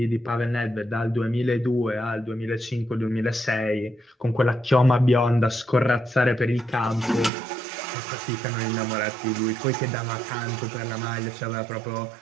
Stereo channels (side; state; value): left; drops out; at 7.3 s